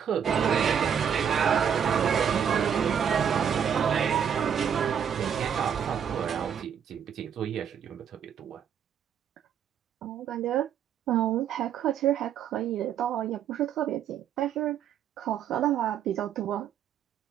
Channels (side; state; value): left; quieter; 8.3 dB